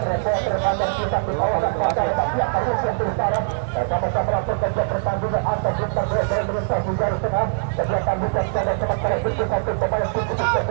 kantor pusat di kawasan pasar Bapak Karusian Utara bersama-sama pekerja pertandingan antar bintang desa Indonesia di garis tengah kegiatan bukan pada sementara itu satu pemain cukup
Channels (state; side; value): silent; left; digital silence